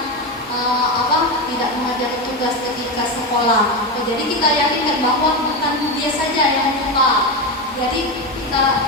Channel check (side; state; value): both; normal; correlation 0.15